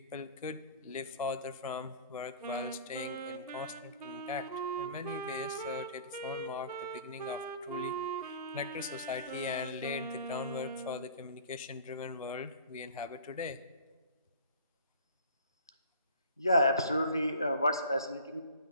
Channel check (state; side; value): inverted; both; correlation -0.46